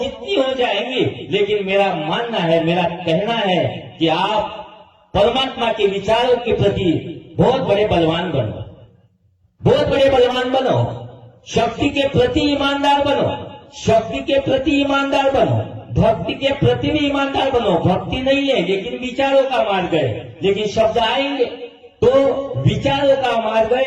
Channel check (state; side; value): identical; both; correlation 1.00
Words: हो जाएंगी, लेकिन मेरा मानना है, मेरा कहना है कि आप परमात्मा के विचारों के प्रति बहुत बड़े बलवान बनो, बहुत बड़े बलवान बनो। शक्ति के प्रति ईमानदार बनो, शक्ति के प्रति ईमानदार बनो, भक्ति के प्रति भी ईमानदार बनो। भक्ति नहीं है लेकिन विचारों का मार्ग है, लेकिन शब्द आएंगे तो विचारों का मार्ग है,